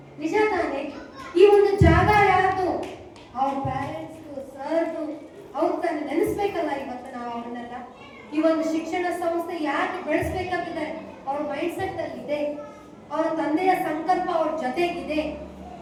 ನಿಜ ತಾನೆ? ಈ ಒಂದು ಜಾಗ ಯಾರ್ದು? ಅವ್ರ ಪೇರೆಂಟ್ಸ್, ಸರ್ದು, ಅವ್ರು ತಾನು ನೆನೆಸ್ಬೇಕಲ್ಲ. ಇವತ್ತು ನಾವು ಅವನ್ನೆಲ್ಲ ಈ ಒಂದು ಶಿಕ್ಷಣ ಸಂಸ್ಥೆ ಯಾಕೆ ಬೆಳೆಸ್ಬೇಕಂತಿದೆ, ಅವ್ರ ಮೈಂಡ್ ಸೆಟ್ ಅಲ್ಲಿ ಇದೆ. ಅವರ ತಂದೆಯ ಸಂಕಲ್ಪ ಅವ್ರ ಜೊತೆಗಿದೆ.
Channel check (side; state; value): both; identical; correlation 1.00